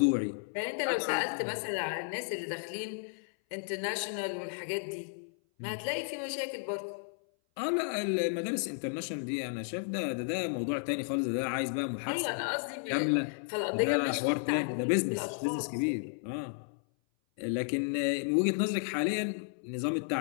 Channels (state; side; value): silent; right; 56 dB below the other